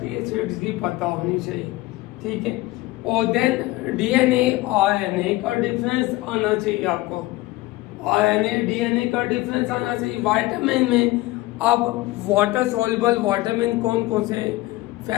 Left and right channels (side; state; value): right; quieter; 19.0 dB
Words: एसिड्स की पता होनी चाहिए, ठीक है। और देन डीएनए आरएनए का डिफरेंस आना चाहिए आपको। आरएनए डीएनए का डिफरेंस आना चाहिए। विटामिन में अब वाटर सॉल्युबल विटामिन कौन कौन से,